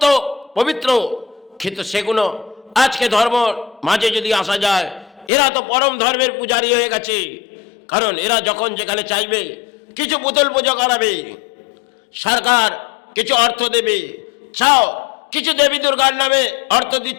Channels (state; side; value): drops out; right; at 5.3 s